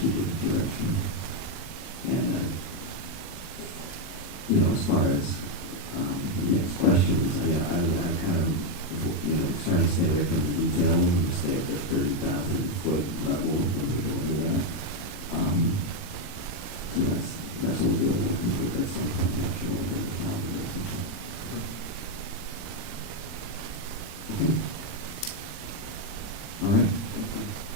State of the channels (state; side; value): late; right; 40 ms